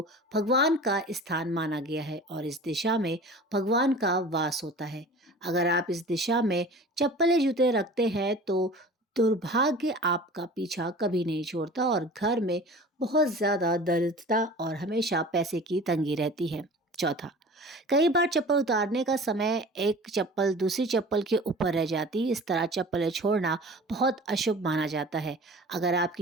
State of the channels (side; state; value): both; normal; correlation 0.40